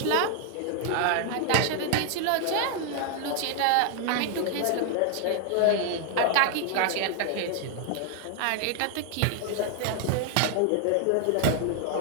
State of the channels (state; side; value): different; both; correlation 0.00